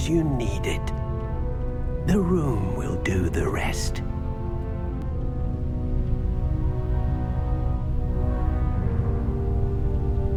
you need it. The room will do the rest.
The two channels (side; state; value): both; identical; correlation 1.00